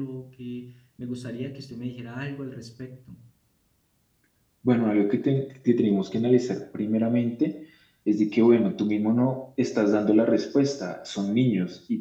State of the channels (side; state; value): both; identical; correlation 1.00